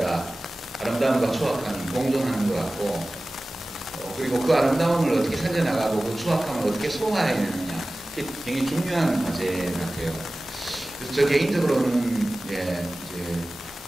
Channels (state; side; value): normal; both; correlation 0.97